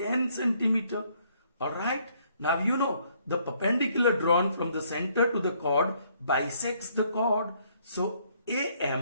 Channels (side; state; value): both; inverted; correlation -0.67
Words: centimeter. Alright. Now you know the perpendicular drawn from the center to the chord bisects the chord. So